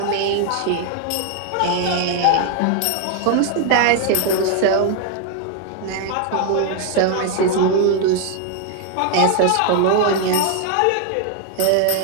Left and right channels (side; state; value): both; different; correlation 0.00